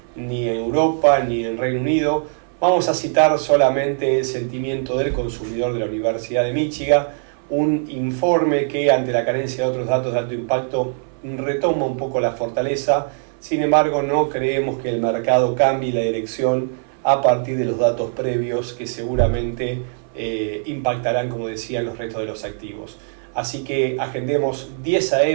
ni en Europa, ni en Reino Unido, vamos a citar solamente el sentimiento del consumidor de la Universidad de Michigan, un informe que ante la carencia de otros datos de alto impacto retoma un poco la fortaleza. Sin embargo, no creemos que el mercado cambie la dirección a partir de los datos previos que seguramente impactarán, como decía, los restos de los activos. Así que agendemos 10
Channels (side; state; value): left; silent; 61 dB below the other